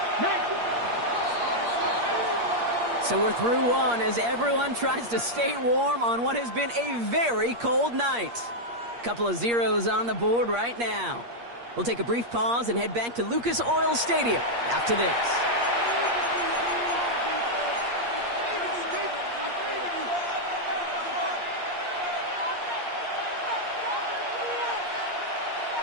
So we're through one as everyone tries to stay warm on what has been a very cold night. Couple of zeros on the board right now. We'll take a brief pause and head back to Lucas Oil Stadium after this.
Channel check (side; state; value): left; late; 8.5 ms